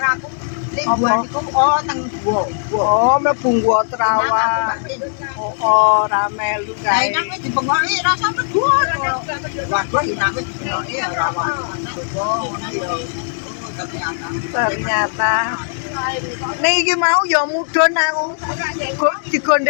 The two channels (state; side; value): silent; right; digital silence